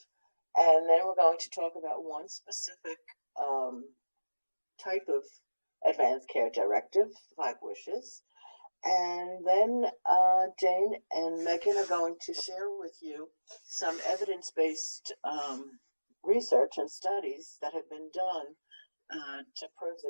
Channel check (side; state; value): both; inverted; correlation -1.00